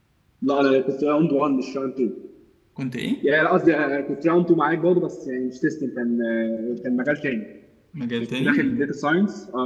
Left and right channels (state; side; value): identical; both; correlation 1.00